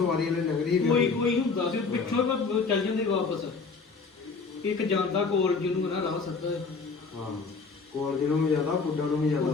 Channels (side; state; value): right; quieter; 4.6 dB